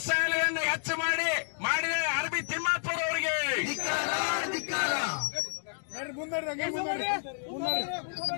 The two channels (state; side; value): silent; right; digital silence